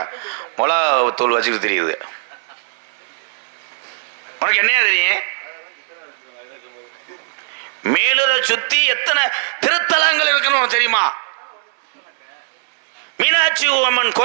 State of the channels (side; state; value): left; silent; digital silence